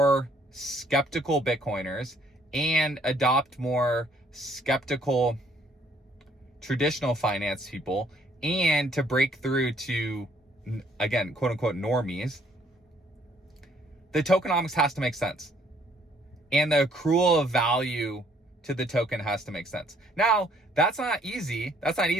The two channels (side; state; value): both; normal; correlation 0.64